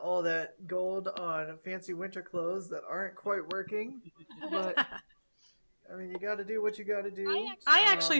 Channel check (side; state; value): both; inverted; correlation -1.00